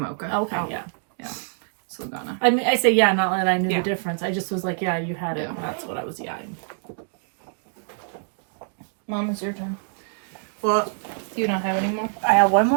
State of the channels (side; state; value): left; silent; digital silence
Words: Okay, Oh. yeah. Saldana. I mean, I say yeah, not that I knew Yeah. the difference. I just was like, yeah, you had it. Yeah. And that's what I was yawning. Mom, it's your turn. Well, Do you not have any more? I have one